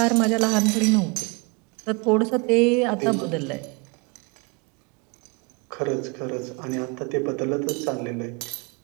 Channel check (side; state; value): left; quieter; 29.9 dB